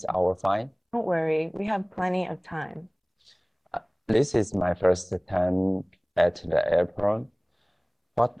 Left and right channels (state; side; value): identical; both; correlation 1.00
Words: our flight? Don't worry, we have plenty of time. This is my first time at the airport. What